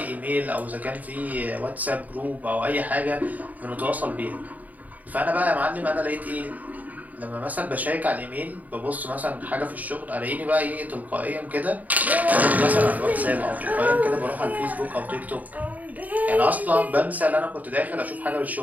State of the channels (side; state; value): left; late; 0.076 ms